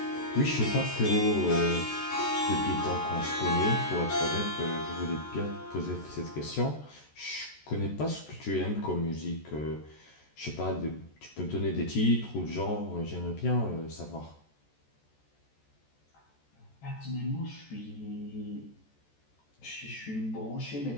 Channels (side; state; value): right; late; 14 ms